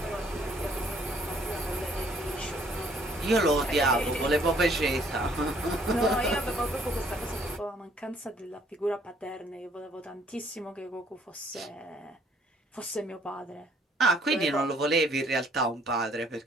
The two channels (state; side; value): normal; both; correlation 0.62